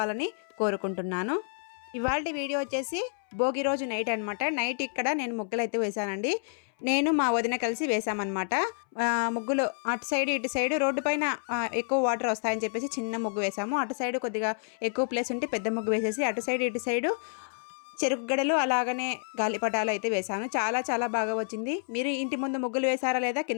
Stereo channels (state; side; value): silent; right; 58 dB below the other